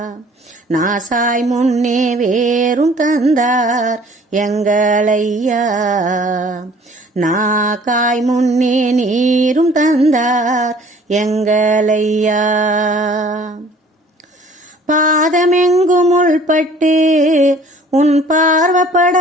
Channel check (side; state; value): both; normal; correlation 0.53